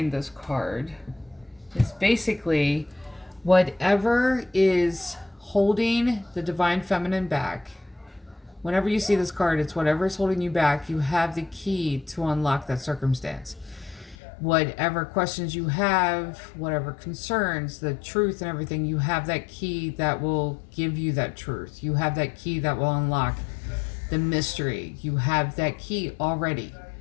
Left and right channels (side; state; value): right; drops out; at 14.2 s